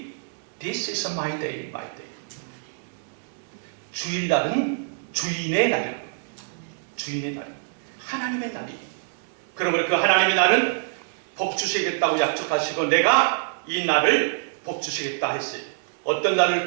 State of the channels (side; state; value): left; silent; digital silence